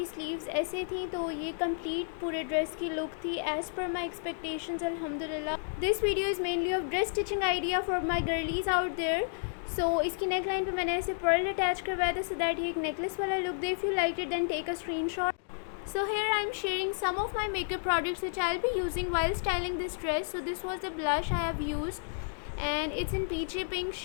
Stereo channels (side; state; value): right; silent; digital silence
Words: स्लीव्स ऐसे थी. तो ये कंप्लीट पूरे ड्रेस की लुक थी एज़ पर माई एक्सपेक्टेशंस अल्हम्दुलिल्लाह. This video is mainly of dress stitching idea for my girlies out there. So इसकी नेक लाइन पर मैंने ऐसे पर्ल अटैच करवाया था सो दैट ये एक नेकलेस वाला लुक दे. If you like it then take a screenshot. So here I am sharing some of my makeup products which I will be using while styling this dress. So this was the blush I have used and it's in peachy pink